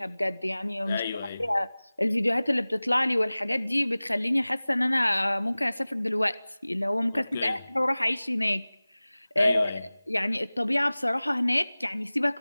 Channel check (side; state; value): both; inverted; correlation -0.99